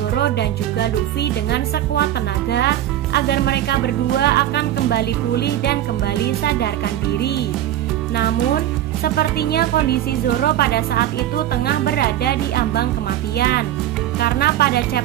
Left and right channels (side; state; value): left; quieter; 12.5 dB